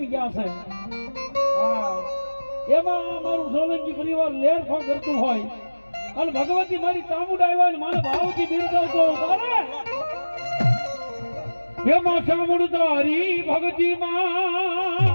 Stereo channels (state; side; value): inverted; both; correlation -1.00